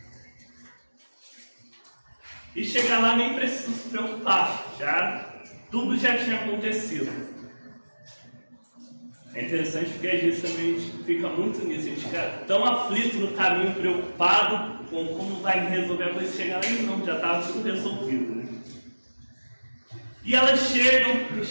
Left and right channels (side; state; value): both; inverted; correlation -1.00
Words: E chegar lá nem precisa se preocupar, tudo já tinha acontecido. É interessante porque às vezes também a gente fica muito nisso, a gente fica tão aflito no caminho, preocupado com como vai resolver a coisa, chegar lá e não, já estava tudo resolvido, né? E elas chegam,